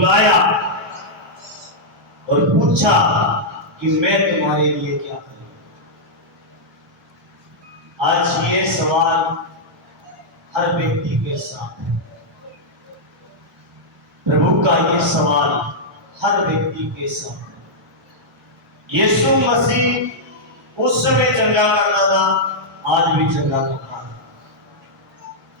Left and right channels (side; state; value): both; normal; correlation -0.07